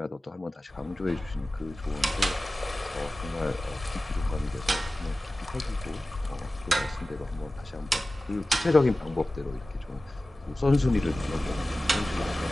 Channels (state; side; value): normal; both; correlation 0.96